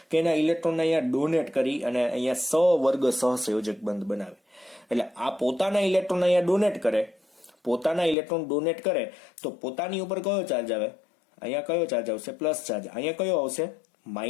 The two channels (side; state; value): right; drops out; at 8.2 s